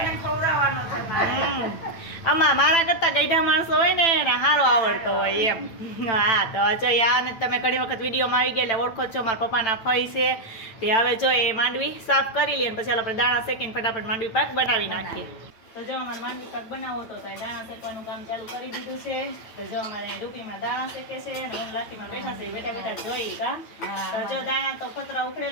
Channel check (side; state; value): right; late; 9.0 ms